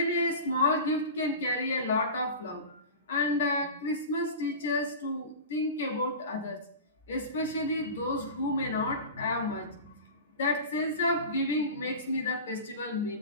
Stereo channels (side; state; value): both; inverted; correlation -0.31